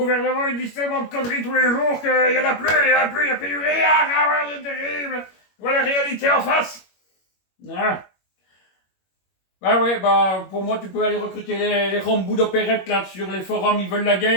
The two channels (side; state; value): right; late; 21 ms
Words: ils disent tellement de conneries tous les jours qu'il y en a plus, il y a plus de rien. Ah ouais, c'est terrible. Voilà la réalité en face. Ah. Bah ouais, bah pour moi tu peux aller recruter les rambous d'opérette là sur les forums, ils veulent la